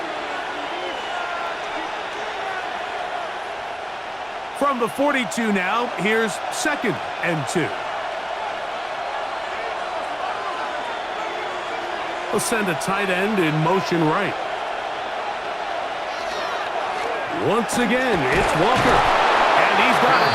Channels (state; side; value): identical; both; correlation 1.00